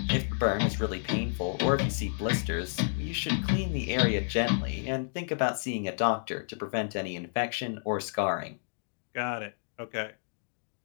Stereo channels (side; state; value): right; silent; digital silence